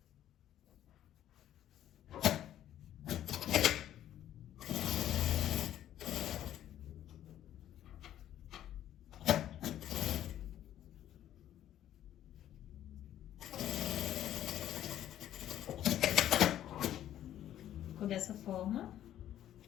Ficou dessa forma.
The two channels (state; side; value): quieter; right; 11.7 dB